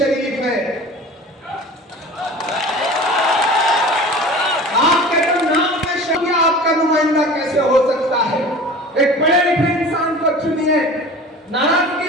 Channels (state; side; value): normal; both; correlation 0.39